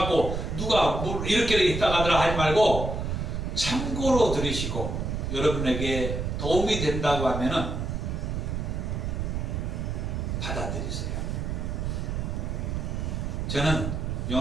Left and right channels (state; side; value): noise; right; rumble, 2 dB below the sound